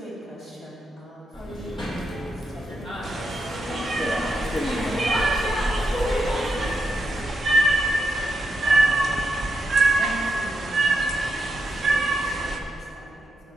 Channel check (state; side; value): normal; both; correlation 0.84